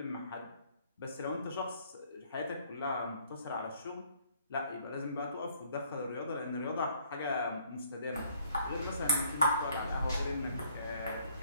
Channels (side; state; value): both; inverted; correlation -0.62